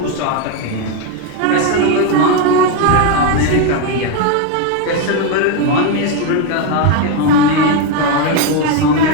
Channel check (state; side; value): different; both; correlation 0.02